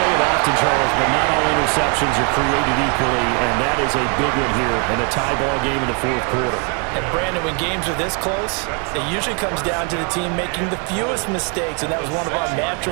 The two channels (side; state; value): left; quieter; 35.5 dB